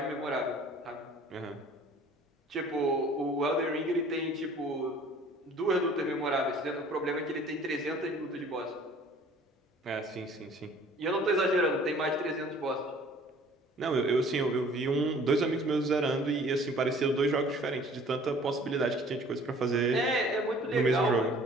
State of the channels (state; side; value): normal; both; correlation 0.52